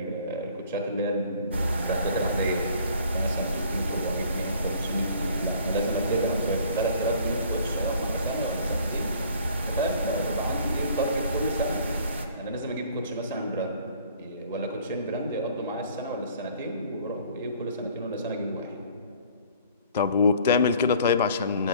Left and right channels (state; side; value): inverted; both; correlation -0.54